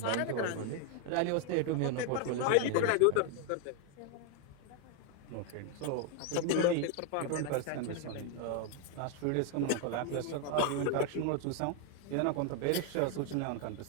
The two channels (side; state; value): both; different; correlation 0.01